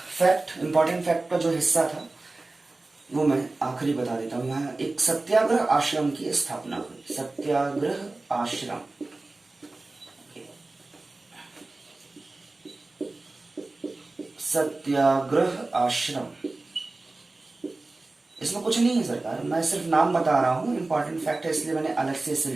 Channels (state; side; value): quieter; left; 3.2 dB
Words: इंपॉर्टेंट फैक्ट का जो हिस्सा था वो मैं आखिरी बता देता हूं। यहाँ एक सत्याग्रह आश्रम की स्थापना हुई। सत्याग्रह आश्रम, सत्याग्रह आश्रम, इसमें कुछ नहीं है सरकार, मैं सिर्फ नाम बता रहा हूं। इंपॉर्टेंट फैक्ट है इसलिए मैंने अलग से इसे